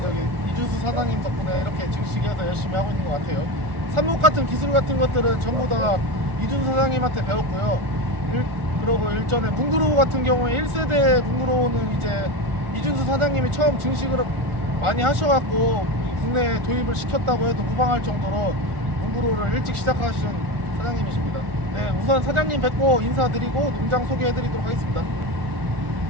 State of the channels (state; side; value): late; left; 1.4 ms